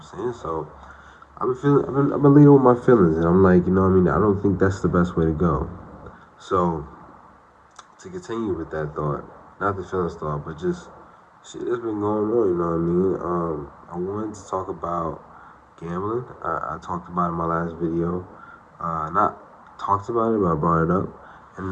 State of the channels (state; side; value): identical; both; correlation 1.00